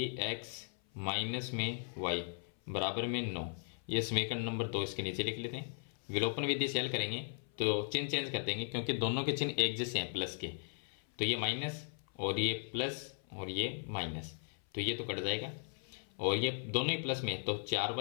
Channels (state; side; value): silent; right; 53 dB below the other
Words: माइनस में y बराबर में 9। ये समीकरण नंबर 2 इसके नीचे लिख लेते हैं। विलोपन विधि से हल करेंगे तो चिन्ह चेंज कर देंगे क्योंकि दोनों के चिन्ह एक जैसे हैं प्लस के। तो ये माइनस और ये प्लस और ये माइनस, तो ये तो कट जाएगा। और ये दोनों ही प्लस में, तो